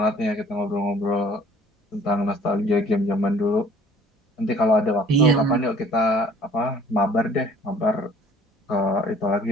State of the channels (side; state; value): both; normal; correlation 0.53